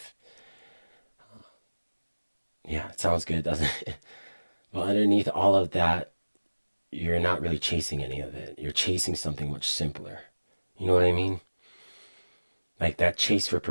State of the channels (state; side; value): inverted; both; correlation -1.00